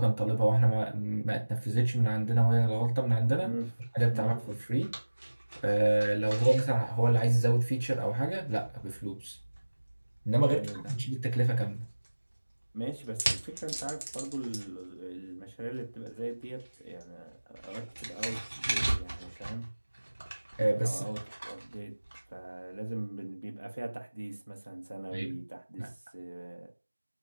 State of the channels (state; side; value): inverted; both; correlation -1.00